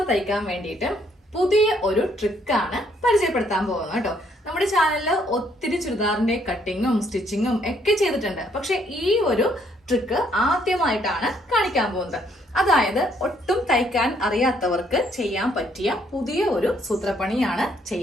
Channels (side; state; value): both; normal; correlation 0.68